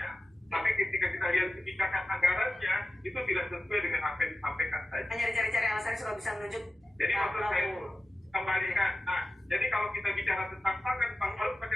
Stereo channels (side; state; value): both; normal; correlation 0.93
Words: Tapi ketika kita lihat kebijakan anggarannya, itu tidak sesuai dengan apa yang disampaikan tadi. Hanya dicari-cari alasannya supaya bisa menunjuk. Jadi maksud saya itu kembalikan. Nah, jadi kalau kita bicara tentang pangan harus